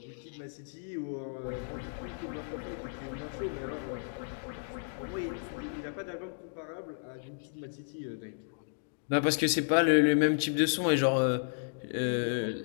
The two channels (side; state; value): right; silent; digital silence